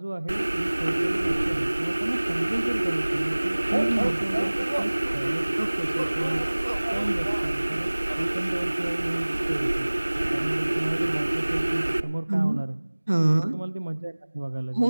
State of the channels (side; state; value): both; inverted; correlation -1.00